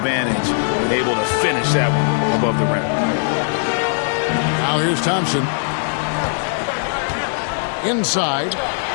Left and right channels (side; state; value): right; silent; digital silence